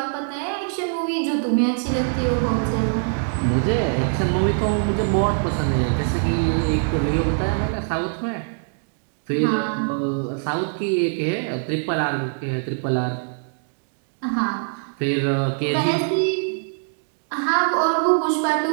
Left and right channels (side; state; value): left; silent; 64 dB below the other